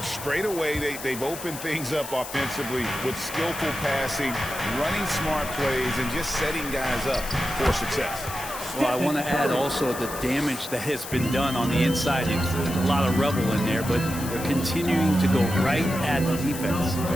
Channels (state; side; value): noise; left; hiss, 10 dB below the sound